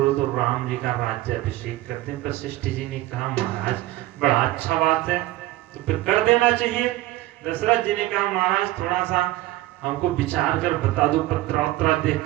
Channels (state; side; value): quieter; left; 16.8 dB